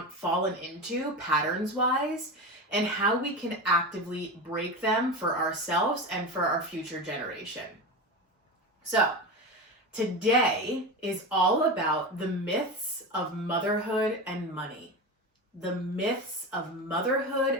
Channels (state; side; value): normal; both; correlation 0.23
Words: fallen into patterns wise, and how we can actively break them for ourselves and for our future generation. So today is all about the myths of motherhood and money. The myths of motherhood